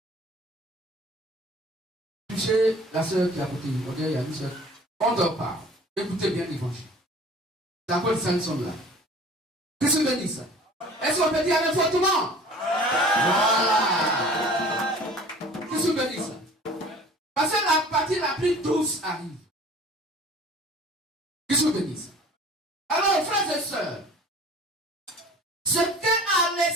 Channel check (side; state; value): both; normal; correlation 0.46